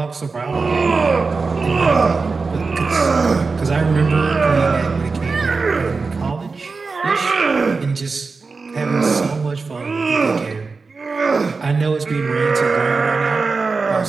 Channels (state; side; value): quieter; left; 4.3 dB